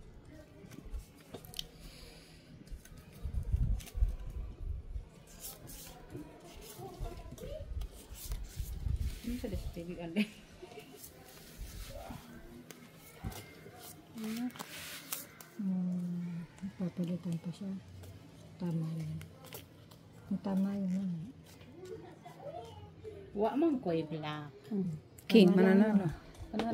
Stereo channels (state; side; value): identical; both; correlation 1.00